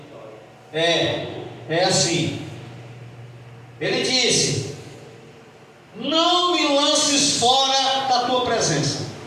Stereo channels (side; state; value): both; identical; correlation 1.00